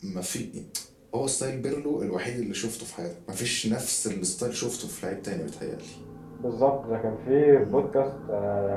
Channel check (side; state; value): both; identical; correlation 1.00